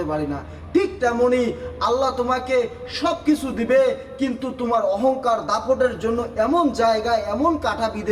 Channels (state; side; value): identical; both; correlation 1.00